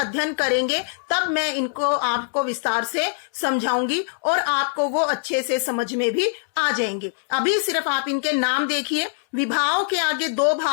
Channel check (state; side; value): silent; right; digital silence